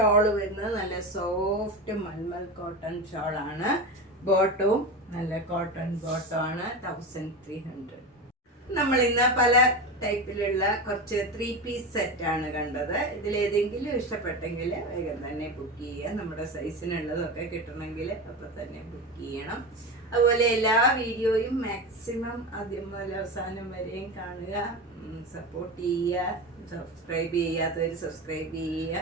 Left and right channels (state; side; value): normal; both; correlation 0.22